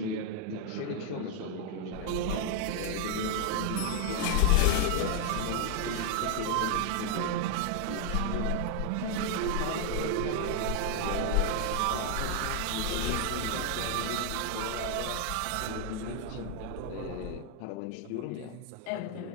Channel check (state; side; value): different; both; correlation 0.00